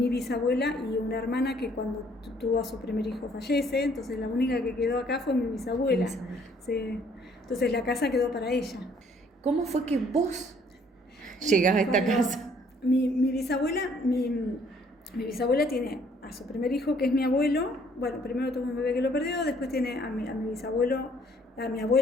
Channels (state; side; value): normal; both; correlation 0.62